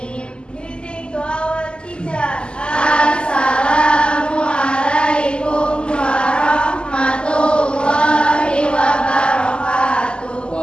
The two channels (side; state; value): right; late; 0.050 ms